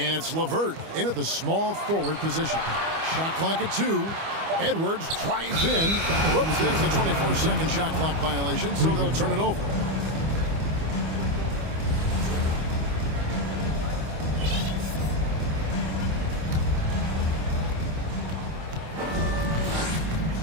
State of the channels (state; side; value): late; left; 25 ms